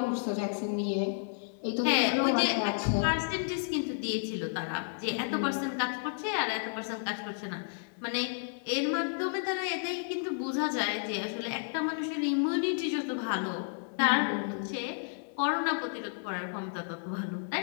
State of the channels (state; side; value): silent; right; digital silence